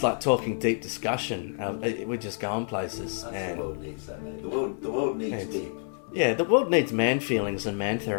like talking deep discussion. We're just going places. The world needs that, man. The world needs deep. Yeah, the world needs man feelings and man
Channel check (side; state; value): right; silent; digital silence